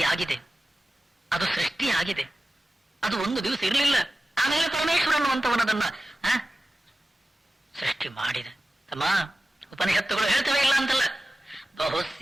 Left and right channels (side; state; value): both; normal; correlation 0.95